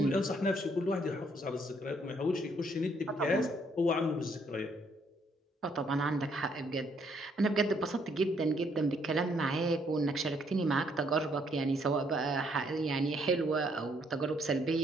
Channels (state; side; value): normal; both; correlation 0.69